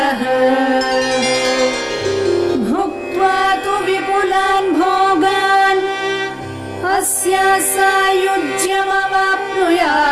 भुक्त्वा तु विपुलान् भोगान् अस्या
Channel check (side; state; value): both; identical; correlation 1.00